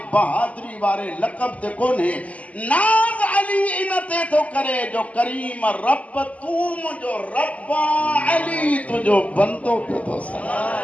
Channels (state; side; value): late; right; 0.069 ms